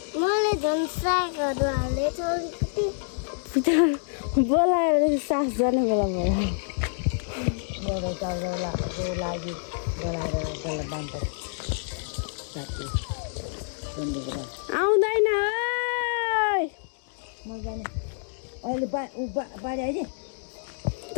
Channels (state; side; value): silent; right; digital silence